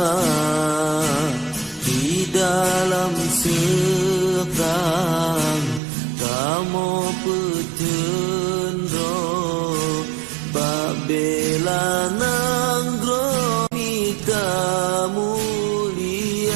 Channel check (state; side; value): drops out; left; at 5.8 s